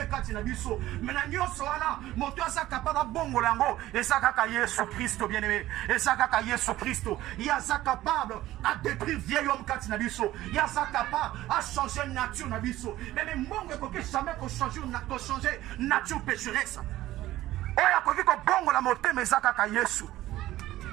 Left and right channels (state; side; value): quieter; left; 15.4 dB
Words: kati na biso. Mais na nyoso wana, moto asa capable bongo lango, et ça kaka Yesu Christo, bien-aimé, et ça kaka Yesu Christo. Il y a ça capable à détruire vieil homme kati na biso. Il y a ça capable à changer nature na biso. Mais mongo ko jamais ko changer nature pécheresse. Oya koki ko bongo la motema ezaka ka Yesu.